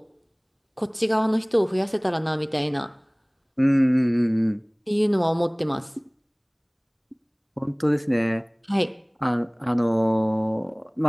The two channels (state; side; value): identical; both; correlation 1.00